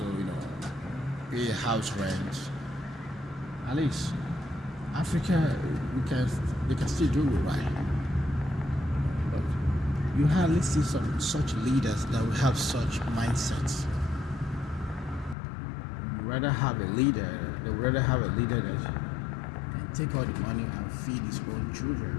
pay house rent. At least Africa, they can still do it right. But you hardly see some such leaders that will have such mindsets. They would rather have a leader that can take all the money and feed his own children.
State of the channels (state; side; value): drops out; right; at 15.4 s